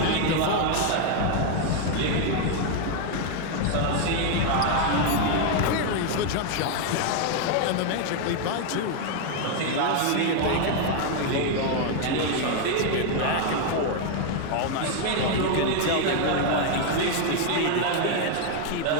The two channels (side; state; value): both; different; correlation 0.01